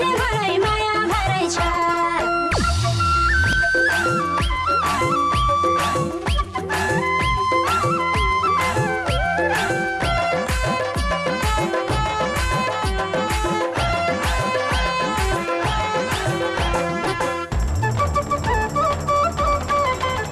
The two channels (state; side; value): identical; both; correlation 1.00